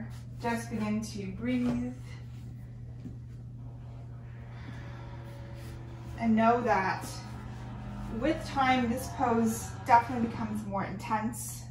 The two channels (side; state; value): both; identical; correlation 1.00